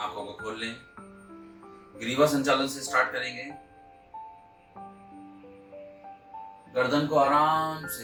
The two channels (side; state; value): both; identical; correlation 1.00